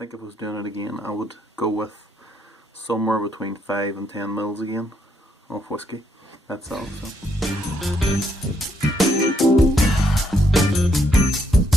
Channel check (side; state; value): both; normal; correlation 0.73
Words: if I was doing it again, I would go with somewhere between 5 and 10ml again of whiskey. That's all. So.